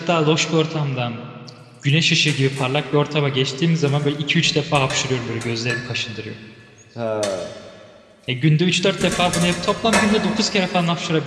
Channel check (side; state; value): both; identical; correlation 1.00